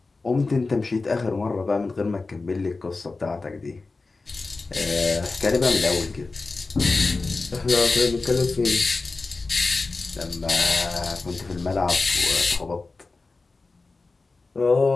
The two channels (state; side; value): quieter; right; 3.7 dB